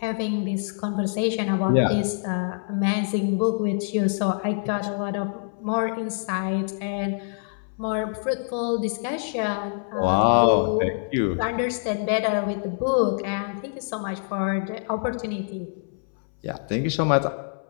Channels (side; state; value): right; silent; 61 dB below the other